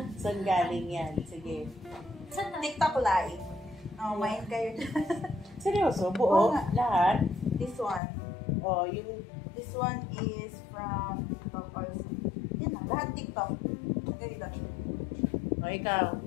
Saan galing yan? Sige. TikTok live. Oh, main kayo. Seryoso? Buo? Oo nga. Lahat? This one. O, yung... This one is from TikTok also. Yan na, lahat TikTok. Ganito. O, ikaw?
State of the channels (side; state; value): right; drops out; at 8.0 s